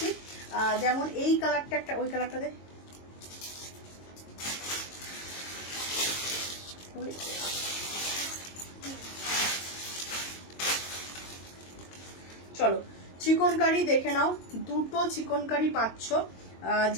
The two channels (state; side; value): late; right; 22 ms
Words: যেমন এই কালারটা একটা, ওই কালারটা দে। চলো, চিকনকারি দেখে নাও। দুটো চিকনকারি পাচ্ছ।